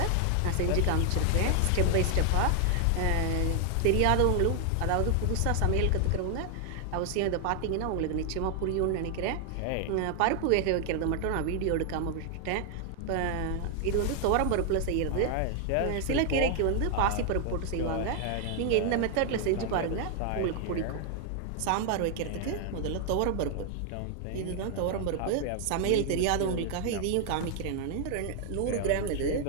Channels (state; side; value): different; both; correlation 0.00